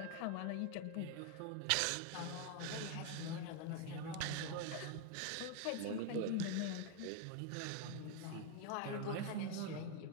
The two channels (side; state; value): both; different; correlation 0.01